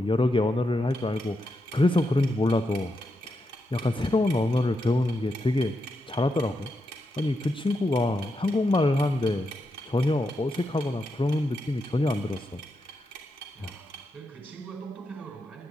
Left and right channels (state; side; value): normal; both; correlation 0.85